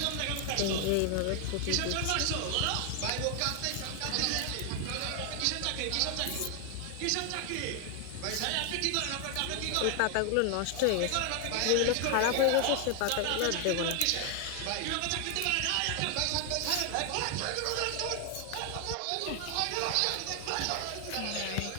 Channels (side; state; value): both; different; correlation 0.00